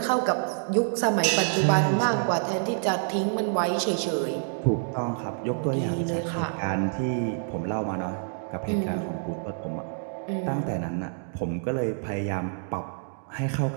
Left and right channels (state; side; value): silent; left; digital silence